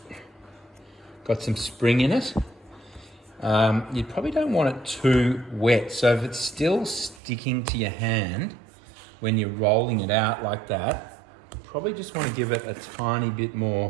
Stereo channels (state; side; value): drops out; left; at 7.2 s